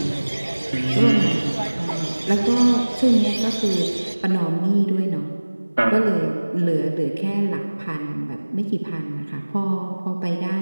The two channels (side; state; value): both; inverted; correlation -1.00